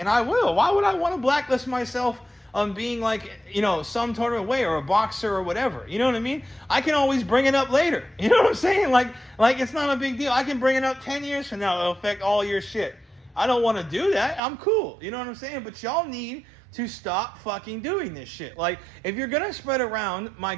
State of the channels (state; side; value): drops out; left; at 14.4 s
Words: I will. Why would I want to blacklist myself on being like, you know, some sort of way, or a boxer or whatever? You know what I mean? I can always bring it up later. You know what I'm saying? Like it's not a big deal. I can bring it up 10 years from now. It'll affect all your shit. I don't want to do that. I'm cool. You know what I'm saying? But y'all need to stop fucking doing this shit. Like, if you're gonna spread around my